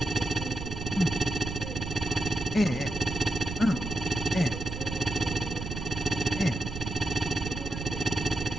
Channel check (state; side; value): noise; right; rumble, 6 dB below the sound